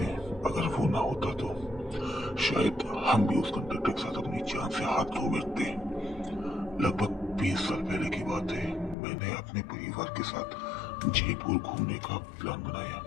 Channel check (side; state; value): right; drops out; at 9.0 s